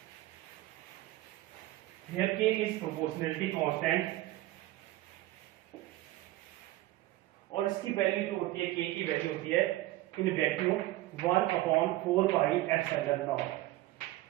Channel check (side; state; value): left; quieter; 17.1 dB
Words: Here K is proportionality constant और इसकी वैल्यू जो होती है K की वैल्यू होती है in vacuum 1/4 pi epsilon not.